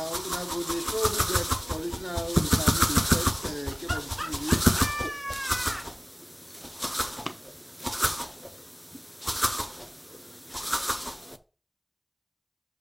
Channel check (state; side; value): identical; both; correlation 1.00